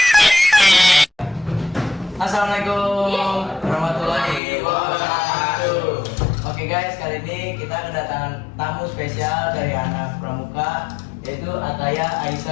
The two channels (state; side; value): drops out; right; at 4.4 s